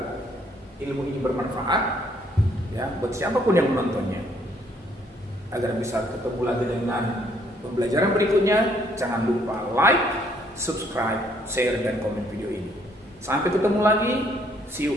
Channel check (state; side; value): normal; both; correlation 0.66